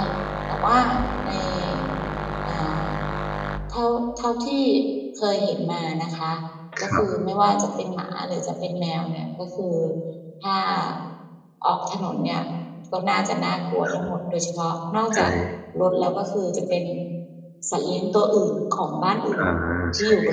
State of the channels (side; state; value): both; identical; correlation 1.00